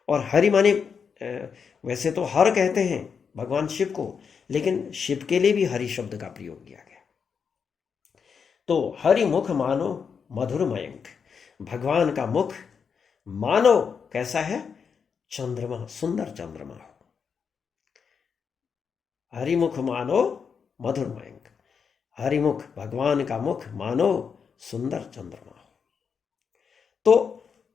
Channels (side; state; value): right; quieter; 6.3 dB